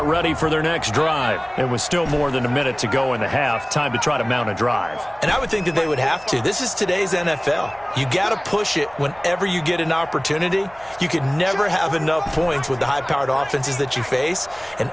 ready for their next drive. And with still more than a minute to go in the half, time to try to mount a drive. And I would think that they would have to. This is today's NFL. You got to push it whenever you get an opportunity. You can never have enough points with the high-powered offenses that you face. And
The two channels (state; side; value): noise; right; hum, 26 dB below the sound